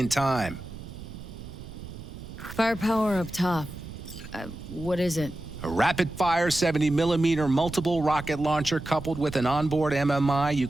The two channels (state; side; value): noise; right; rumble, 13 dB below the sound